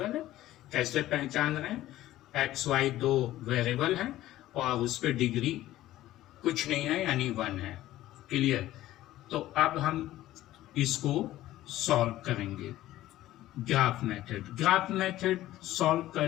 है। कैसे पहचान रहे हैं? एक्स वाई दो वेरिएबल हैं और उस पर डिग्री कुछ नहीं है, यानी 1 है। क्लियर? तो अब हम इसको सॉल्व करेंगे graph method. Graph method solve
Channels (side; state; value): right; quieter; 14.9 dB